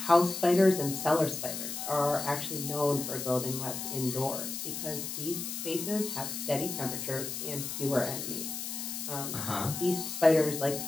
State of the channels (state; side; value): noise; left; hiss, 5 dB below the sound